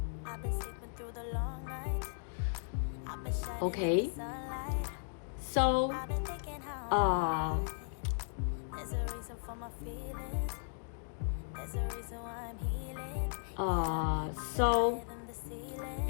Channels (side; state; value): right; silent; digital silence